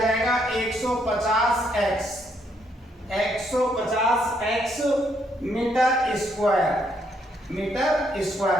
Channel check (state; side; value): normal; both; correlation 0.73